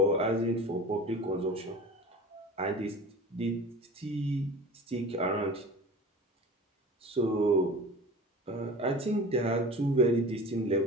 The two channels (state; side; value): normal; both; correlation 0.37